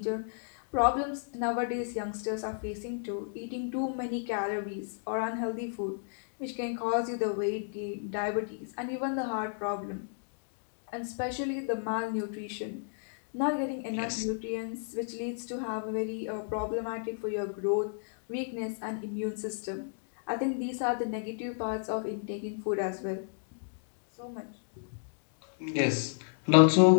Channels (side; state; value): right; silent; digital silence